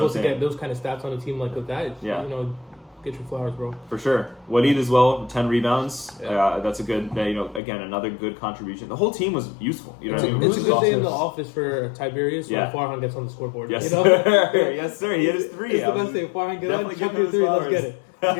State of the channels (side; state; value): right; drops out; at 7.6 s